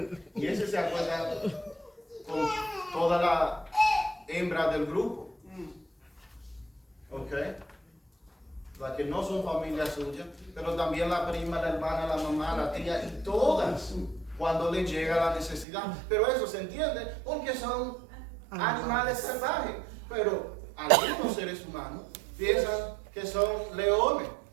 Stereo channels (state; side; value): drops out; left; at 15.7 s